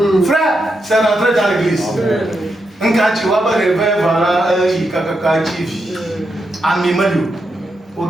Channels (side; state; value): both; normal; correlation 0.84